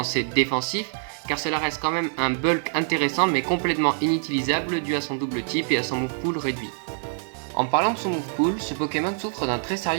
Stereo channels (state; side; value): silent; left; digital silence